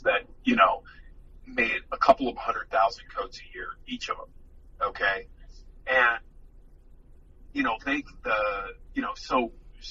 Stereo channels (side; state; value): both; identical; correlation 1.00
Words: that made a couple of 100,000 coats a year, each of them. Okay, and